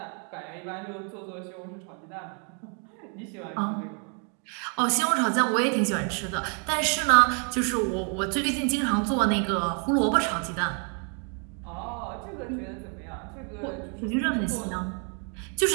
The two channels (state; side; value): quieter; left; 39.4 dB